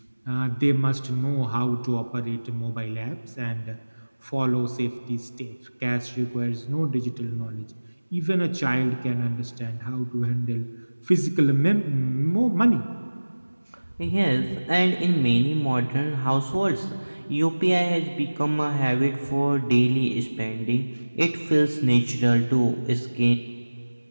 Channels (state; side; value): inverted; both; correlation -1.00